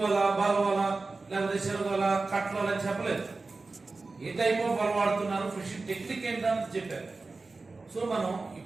వల, బాల వల, లేకపోతే చెరువు వల, కట్ల వల అని చెప్పలేదు. ఏ టైప్ ఆఫ్ వల వాడుతున్నారు, ఫిషింగ్ టెక్నిక్ ఏంటని చెప్పారు. సో మనం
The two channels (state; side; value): quieter; left; 3.7 dB